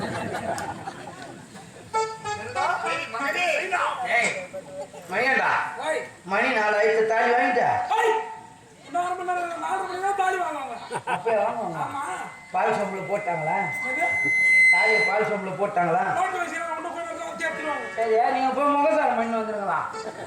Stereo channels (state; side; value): identical; both; correlation 1.00